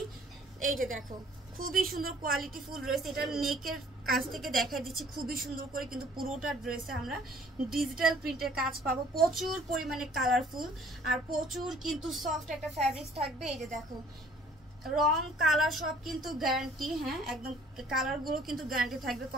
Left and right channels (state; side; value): normal; both; correlation 0.56